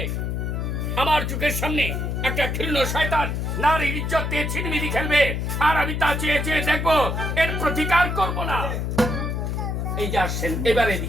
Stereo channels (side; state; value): left; noise; hum, 1 dB below the sound